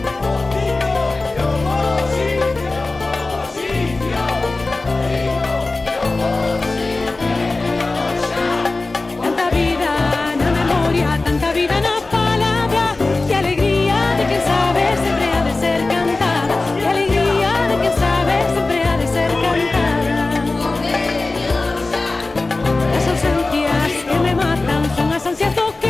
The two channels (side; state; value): right; quieter; 3.3 dB